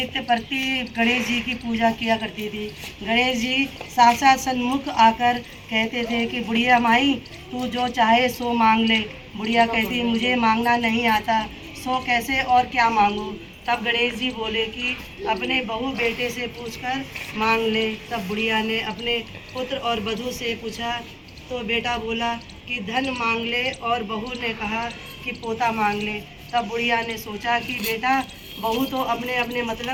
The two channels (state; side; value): identical; both; correlation 1.00